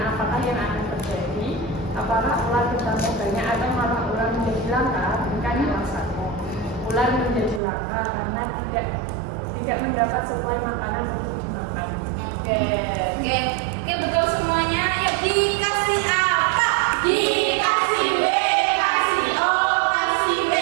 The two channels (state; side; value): drops out; left; at 7.6 s